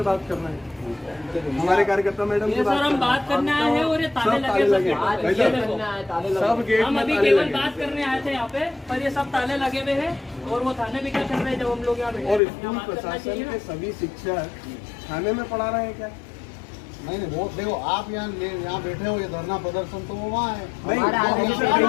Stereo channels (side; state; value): right; drops out; at 12.4 s